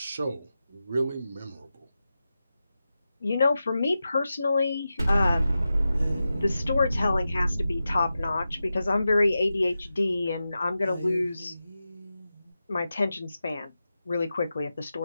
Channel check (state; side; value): inverted; both; correlation -0.91